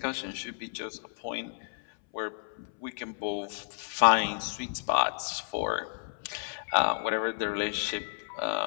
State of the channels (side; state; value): right; silent; 57 dB below the other